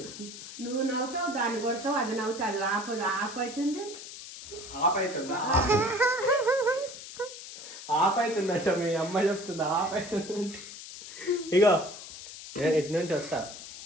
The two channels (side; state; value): left; noise; hiss, 13 dB below the sound